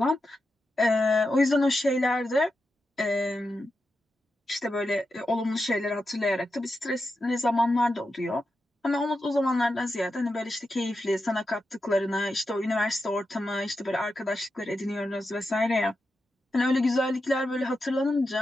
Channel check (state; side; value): normal; both; correlation 0.88